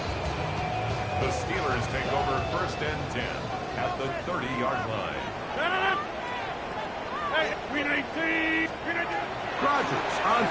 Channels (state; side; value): identical; both; correlation 1.00